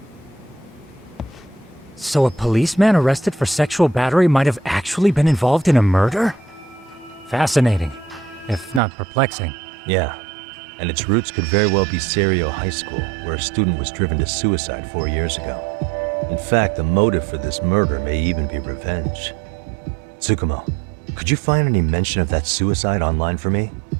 So a policeman arrested for sexual battery might have actually been involved in a murder? Fascinating, if not perplexing. Yeah. And its roots could very well be Serio High School, where a student was driven to suicide 4 years ago. In fact, the motive for this murder may even be revenge. Tsukumo, could you find any mention of that suicide online for me?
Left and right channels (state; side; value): drops out; left; at 8.8 s